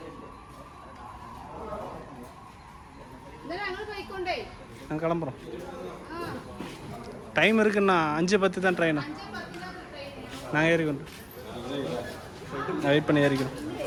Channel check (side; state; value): both; identical; correlation 1.00